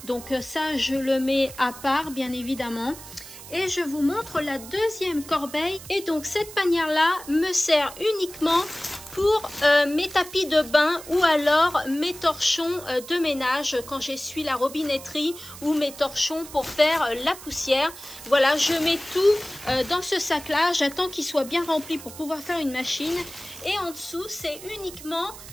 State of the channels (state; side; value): noise; right; hiss, 15 dB below the sound